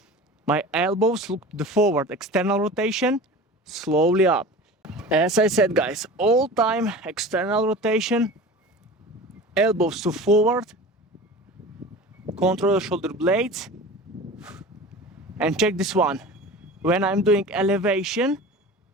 my elbows look to the forward. External rotation, slowly up. As I said, guys, all time external rotation, elbows to forward, control the shoulder blades, and check this one. When I'm doing elevation,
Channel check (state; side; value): normal; both; correlation 0.36